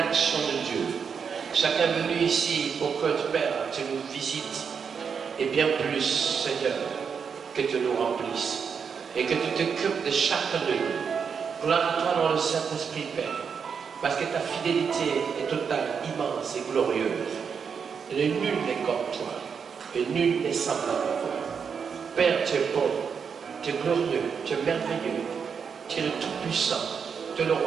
de Dieu. Chacun est venu ici pour que Père, tu nous visites. Et bien plus, Seigneur, que tu nous remplisses. Et que tu t'occupes de chacun de nous. Gloire à toi dans le Saint-Esprit, Père. Parce que ta fidélité est totale, immense et glorieuse. Et nul n'est comme toi. Et nul n'est semblable à toi. Père, tu es bon. Tu es glorieux. Tu es merveilleux. Tu es le Tout-Puissant. Tu es le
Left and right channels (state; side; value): quieter; left; 6.4 dB